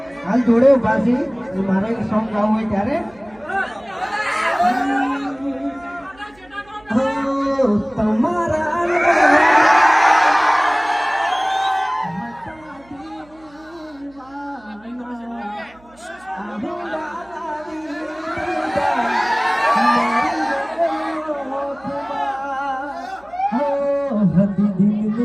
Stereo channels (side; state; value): right; noise; hum, 28 dB below the sound